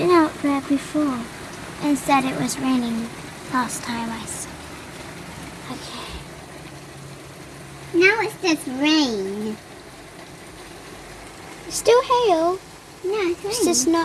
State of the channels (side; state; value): both; identical; correlation 1.00